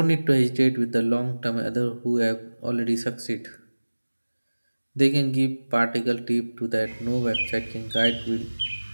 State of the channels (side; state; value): both; inverted; correlation -1.00